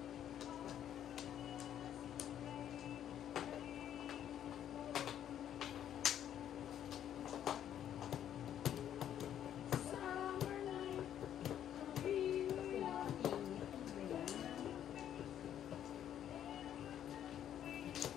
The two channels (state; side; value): quieter; right; 10.3 dB